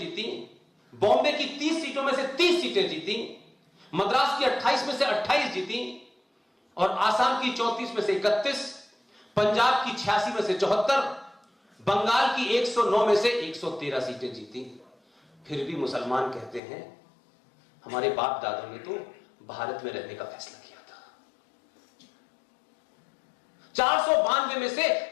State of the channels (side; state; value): right; drops out; at 16.6 s